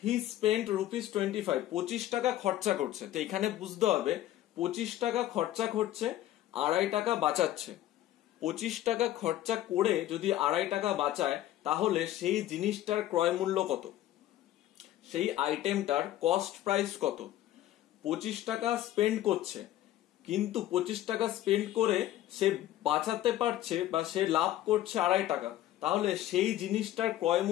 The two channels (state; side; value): quieter; right; 13.6 dB